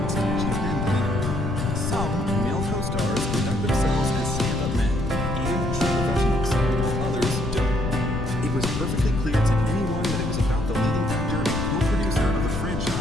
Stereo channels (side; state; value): left; noise; rumble, 3 dB below the sound